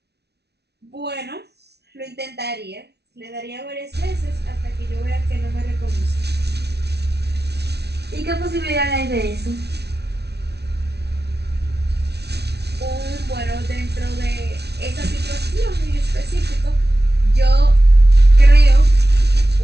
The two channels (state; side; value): late; left; 0.49 ms